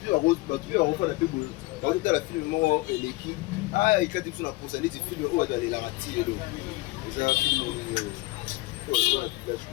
la refaire la plus beau. Quand tu as la film, l'équipe, ah, il y a des choses à penser, les films, où aller la rater. C'est un film.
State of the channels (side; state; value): right; quieter; 21.1 dB